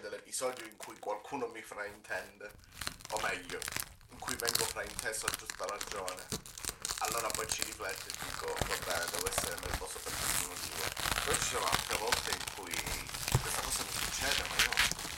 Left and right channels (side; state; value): both; identical; correlation 1.00